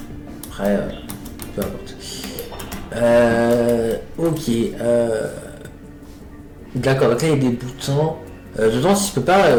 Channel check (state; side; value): identical; both; correlation 1.00